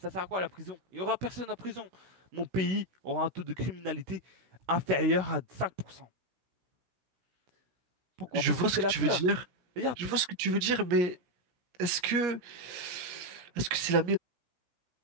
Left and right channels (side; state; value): left; late; 17 ms